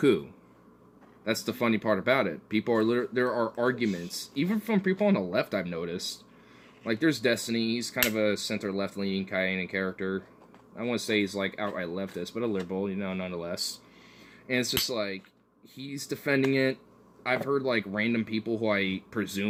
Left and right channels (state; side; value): identical; both; correlation 1.00